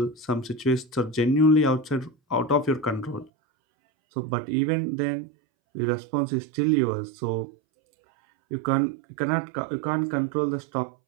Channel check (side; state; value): left; drops out; at 3.3 s